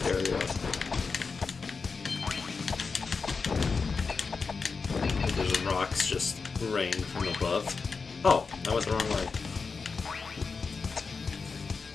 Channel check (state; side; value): quieter; right; 4.8 dB